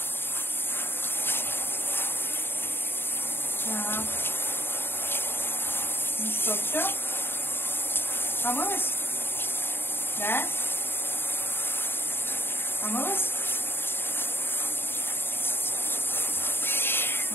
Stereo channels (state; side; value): late; right; 0.11 ms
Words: Так. Ну что, все? Помылась? Да? Помылась?